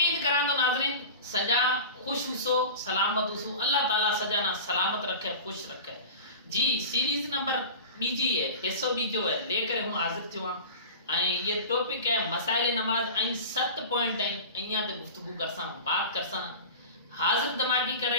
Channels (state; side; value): inverted; both; correlation -0.34